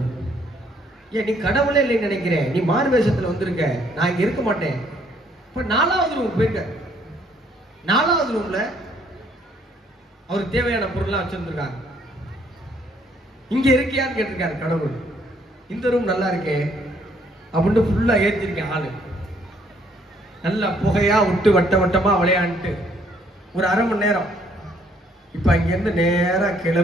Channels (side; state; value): both; normal; correlation 0.66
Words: ஏன் நீ கடவுளே இல்லைன்னு நினைக்கிறேன், நீ மாறு வேஷத்துல வந்திருக்க, நான் இங்க இருக்க மாட்டேன். இப்ப 4வது ரூம் போயிருக்க. 4வது ரூம்ல அவருக்கு தேவையான பொருள்லாம் வச்சிருந்திருக்காங்க. இங்க இருக்கியான்னு கேட்டிருக்காரு கடவுள். இந்த ரூம் நல்லா இருக்கே அப்படின்னு ஃபுல்லா ஏத்திருக்கேன். ஆளு நல்லா புகையா விட்டு வட்ட வட்டமா விளையாண்டுட்டு ஒரு 1/2 மணி நேரம். இப்ப அங்கிருந்து நேரா